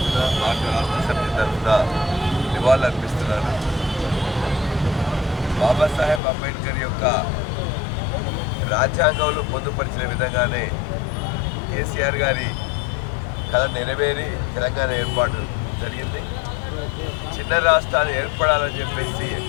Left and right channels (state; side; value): drops out; right; at 6.2 s